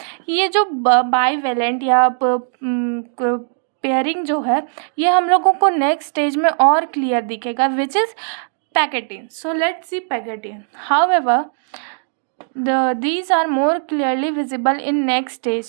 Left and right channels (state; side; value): silent; left; digital silence